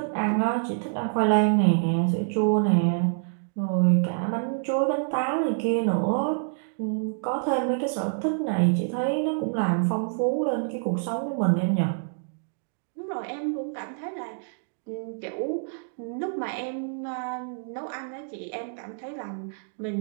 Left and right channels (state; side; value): silent; left; digital silence